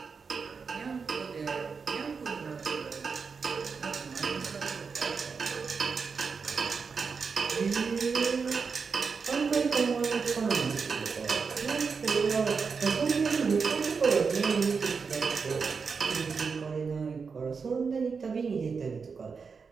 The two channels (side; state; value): left; quieter; 5.3 dB